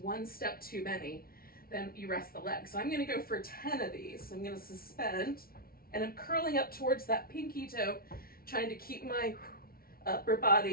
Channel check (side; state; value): right; late; 0.43 ms